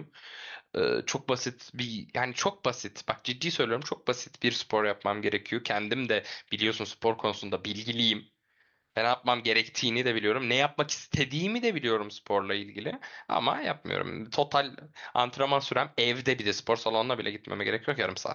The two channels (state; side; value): identical; both; correlation 1.00